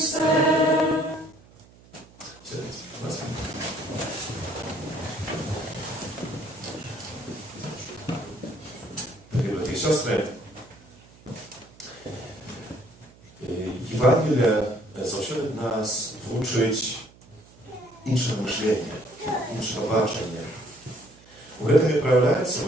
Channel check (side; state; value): right; noise; hum, 25 dB below the sound